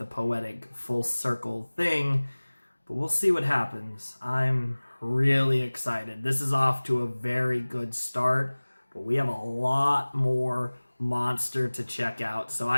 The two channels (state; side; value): inverted; both; correlation -1.00